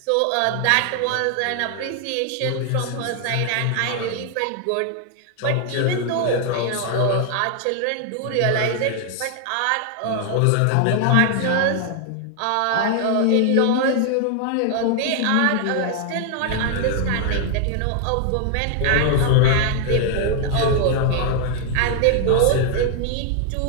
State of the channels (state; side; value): different; both; correlation 0.00